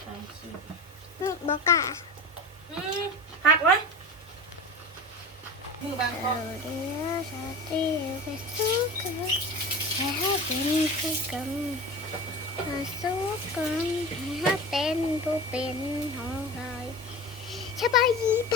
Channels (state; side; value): normal; both; correlation 0.30